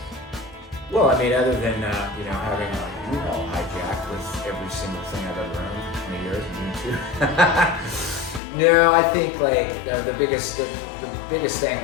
Well, I mean, other than you know, having a U-Haul hijacked with every single thing I've ever owned for 20 years, and you too. No, I think like the biggest thing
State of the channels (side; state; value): right; drops out; at 8.4 s